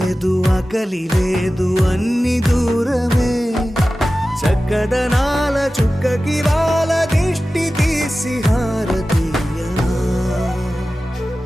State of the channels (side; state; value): both; normal; correlation 0.95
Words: ఆకలి లేదు అన్ని దూరమే చక్కదనాల చుక్కకి వాళ్ళ దిష్టి తీసి హారతీయనా